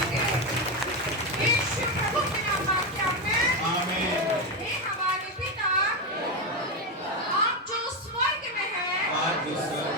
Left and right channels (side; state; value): both; normal; correlation 0.10